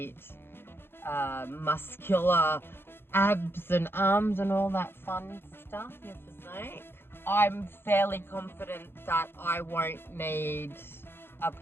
muscular abs and arms and all that fun stuff, your physique. I'm fairly confident that I won't need a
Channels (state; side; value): late; right; 0.11 ms